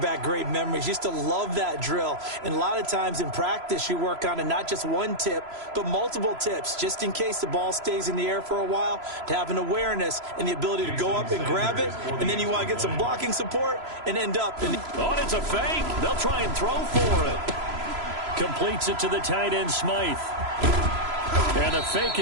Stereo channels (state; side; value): late; left; 3.0 ms